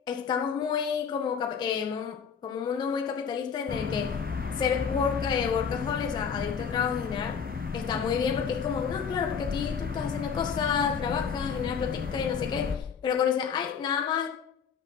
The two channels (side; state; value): right; quieter; 6.6 dB